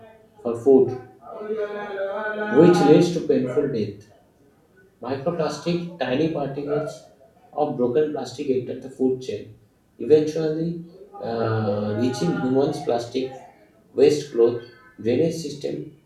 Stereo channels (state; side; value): identical; both; correlation 1.00